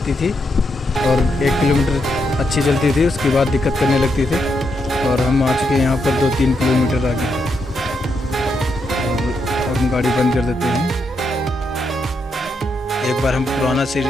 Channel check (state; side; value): normal; both; correlation 0.81